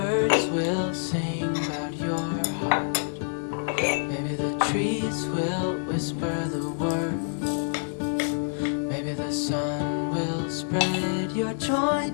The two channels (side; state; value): right; silent; digital silence